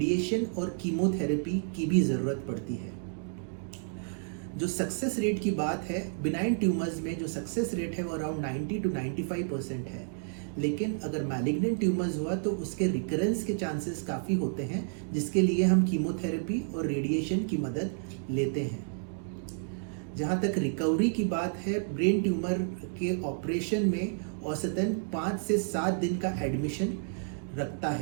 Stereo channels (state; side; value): silent; left; digital silence